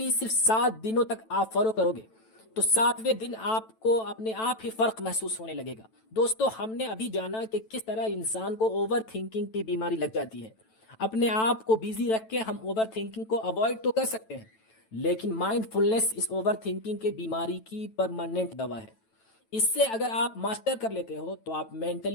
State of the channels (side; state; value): right; late; 9.1 ms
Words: صرف 7 دنوں تک آپ فالو کرو گے تو 7ویں دن آپ کو اپنے آپ ہی فرق محسوس ہونے لگے گا۔ دوستو، ہم نے ابھی جانا کہ کس طرح انسان کو اوور تھنکنگ کی بیماری لگ جاتی ہے۔ اپنے آپ کو بیزی رکھ کے ہم اوور تھنکنگ کو اوائڈ تو کر سکتے ہیں، لیکن مائنڈ فلنس اس اوور تھنکنگ کے بیماری کی پرماننٹ دوا ہے۔ اس سے اگر آپ ماسٹر کر لیتے ہو تو آپ